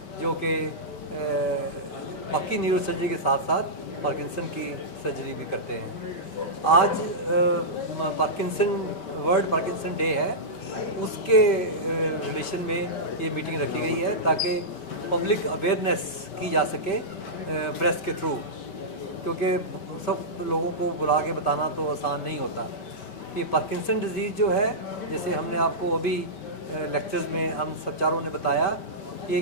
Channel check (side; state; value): right; late; 5.2 ms